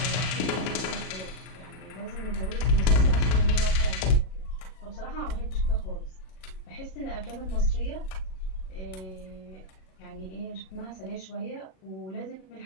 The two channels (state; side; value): late; right; 38 ms